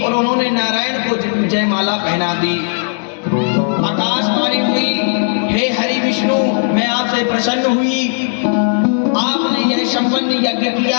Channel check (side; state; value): right; silent; 65 dB below the other